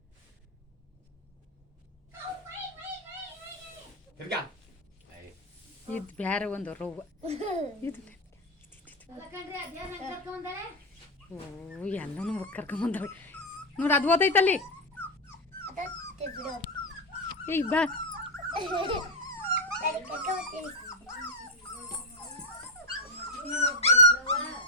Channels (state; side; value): normal; both; correlation 0.05